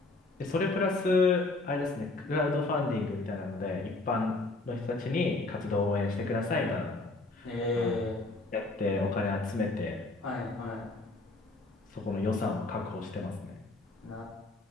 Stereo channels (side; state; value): right; quieter; 3.1 dB